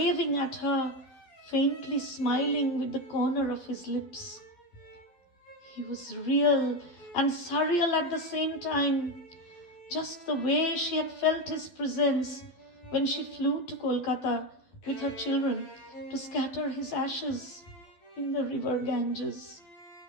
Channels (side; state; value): right; late; 12 ms